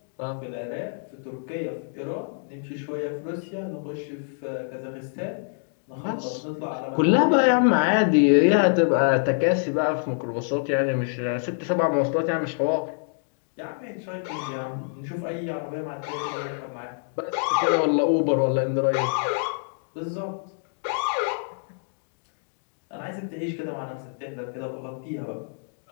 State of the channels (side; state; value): right; silent; digital silence